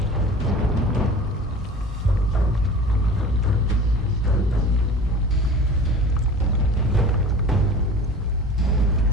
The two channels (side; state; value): both; normal; correlation 0.39